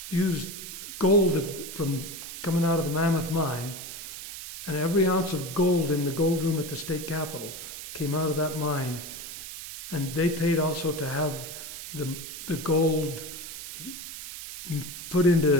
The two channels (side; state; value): right; noise; hiss, 10 dB below the sound